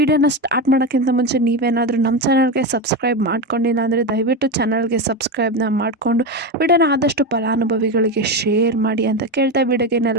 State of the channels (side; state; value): both; normal; correlation 0.16